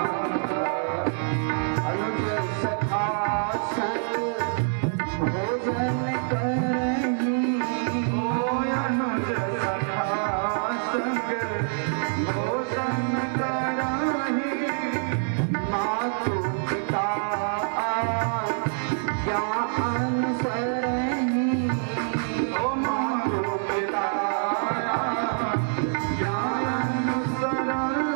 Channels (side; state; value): left; silent; digital silence